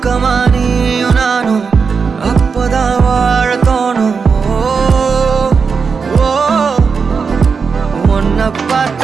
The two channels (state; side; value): quieter; left; 5.4 dB